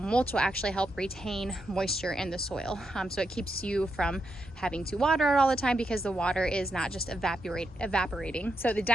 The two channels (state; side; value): normal; both; correlation 0.83